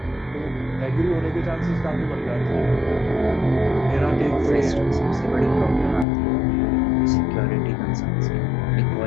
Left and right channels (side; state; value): right; drops out; at 6.1 s